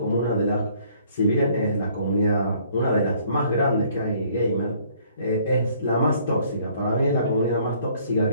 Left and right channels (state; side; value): inverted; both; correlation -0.61